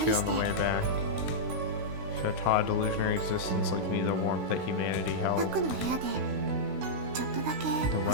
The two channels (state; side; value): late; left; 16 ms